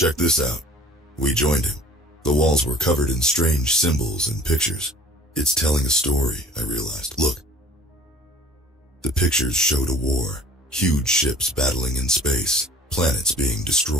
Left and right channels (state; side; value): normal; both; correlation 0.49